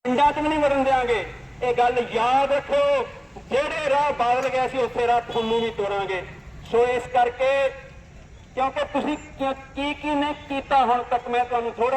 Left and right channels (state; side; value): identical; both; correlation 1.00